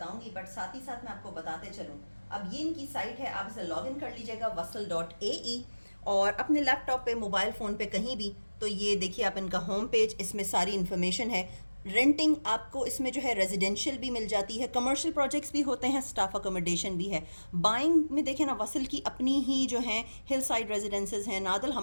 बट साथ ही साथ मैं आपको बताते चलूं। अब ये इनकी साइट है, आप इसे लॉग इन कर लीजिएगा wasl.ae और अपने लैपटॉप पे, मोबाइल फ़ोन पे, कहीं भी। तो ये देखिए आप इनका होम पेज, इसमें सारी इन्फॉर्मेशन है। रेंटिंग आपको इसमें जो है रेजिडेंशियल भी मिल जाती है, कमर्शियल प्रोजेक्ट्स भी होते हैं, स्टाफ अकोमोडेशन भी है। बाइंग में देखें ना, वसल की अपनी ही जो हैं हिल साइड रेजिडेंसेज हैं। नादल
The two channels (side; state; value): both; inverted; correlation -1.00